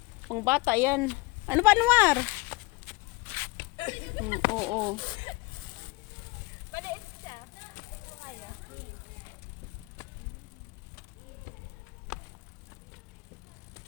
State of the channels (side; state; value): right; quieter; 23.1 dB